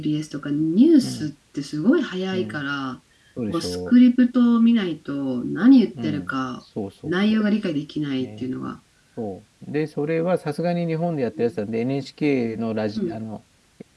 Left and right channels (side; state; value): both; identical; correlation 1.00